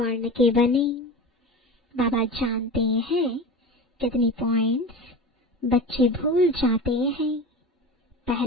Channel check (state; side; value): normal; both; correlation 0.31